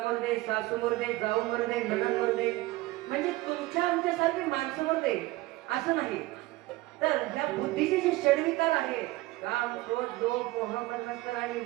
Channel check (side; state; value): left; quieter; 19.4 dB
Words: मरदे सासू मरदे जाऊ मरदे नणंद मरदे म्हणजे तुमच्या आमच्यासारखे माणसं मरदे असं नाही तर ह्या बुद्धीचे जे षडविकार आहे काम क्रोध लोभ मोह मन्मत्सर आणि